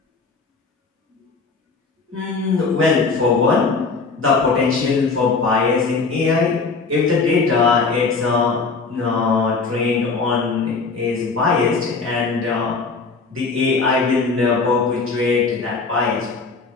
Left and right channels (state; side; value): quieter; right; 4.3 dB